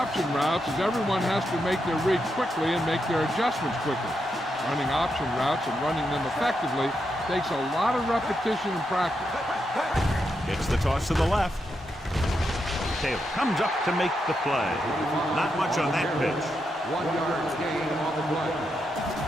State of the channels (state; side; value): normal; both; correlation 0.83